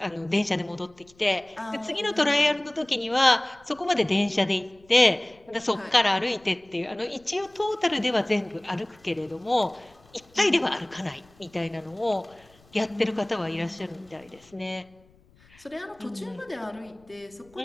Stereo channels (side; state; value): left; noise; rumble, 29 dB below the sound